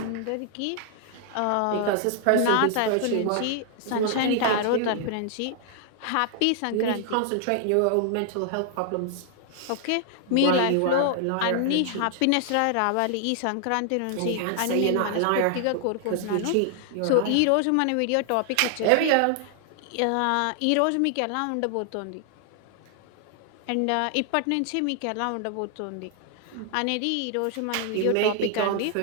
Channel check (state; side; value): different; both; correlation 0.00